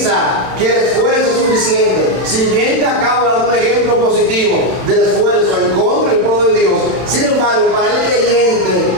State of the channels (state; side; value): late; left; 31 ms